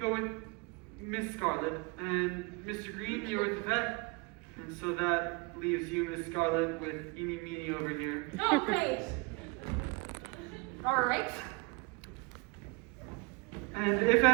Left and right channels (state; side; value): quieter; left; 29.2 dB